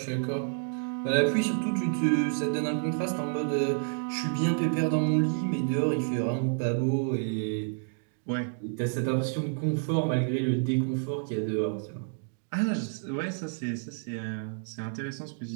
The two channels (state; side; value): silent; left; digital silence